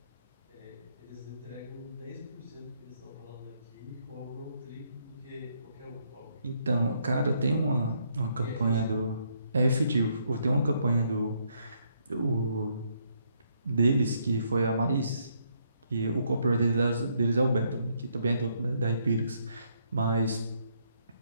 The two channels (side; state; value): both; inverted; correlation -0.72